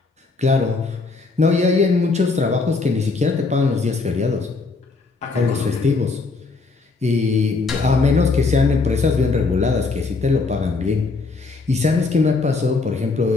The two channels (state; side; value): quieter; right; 4.0 dB